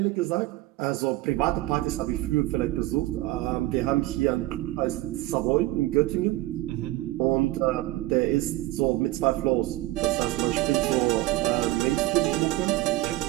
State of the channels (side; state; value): left; quieter; 18.0 dB